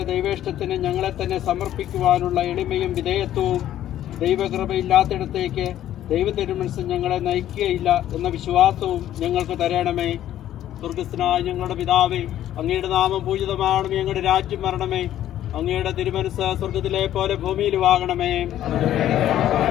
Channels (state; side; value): quieter; right; 12.2 dB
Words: ദൈവേഷ്ടത്തിന് ഞങ്ങളെ തന്നെ സമർപ്പിക്കുവാനുള്ള എളിമയും വിധേയത്വവും ദൈവകൃപയില്ലാത്തിടത്തേക്ക് ദൈവത്തിരുമനസ് ഞങ്ങളെ നയിക്കുകയില്ല എന്ന വിശ്വാസവും ഞങ്ങൾക്ക് തരണമേ. സ്വർഗസ്ഥനായ ഞങ്ങളുടെ പിതാവേ, അങ്ങയുടെ നാമം പൂജിതമാകണമേ. ഞങ്ങളുടെ രാജ്യം വരണമേ. അങ്ങയുടെ തിരുമനസ് സ്വർഗത്തിലെ പോലെ ഭൂമിയിലുമാകണമേ.